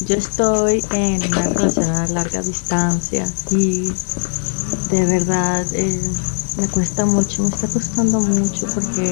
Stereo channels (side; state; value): right; silent; 57 dB below the other